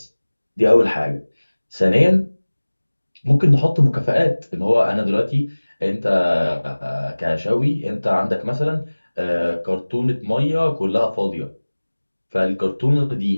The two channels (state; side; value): inverted; both; correlation -1.00